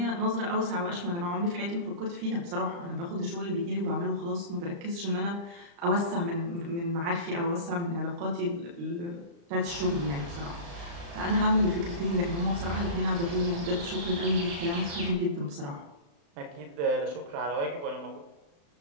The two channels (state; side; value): late; left; 35 ms